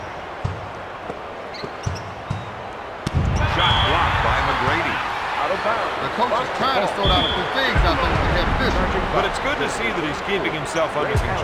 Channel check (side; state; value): both; identical; correlation 1.00